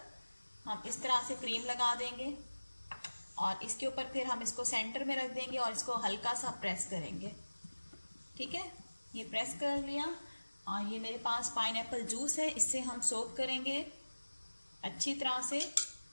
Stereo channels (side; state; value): both; inverted; correlation -1.00